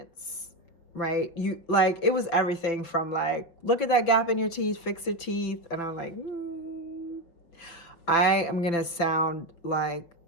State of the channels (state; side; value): late; right; 5.9 ms